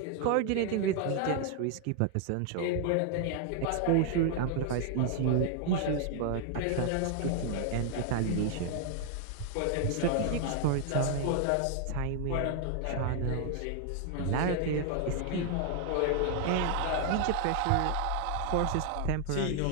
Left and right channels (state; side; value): different; both; correlation 0.00